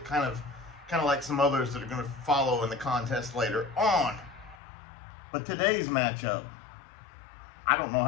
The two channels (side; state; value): right; drops out; at 4.5 s